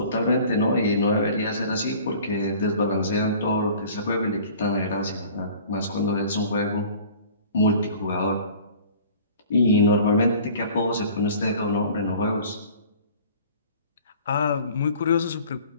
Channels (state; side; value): inverted; both; correlation -0.47